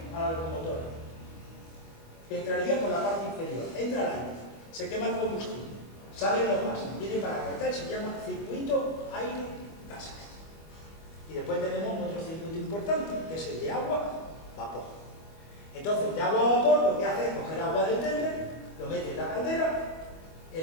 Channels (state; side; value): late; right; 25 ms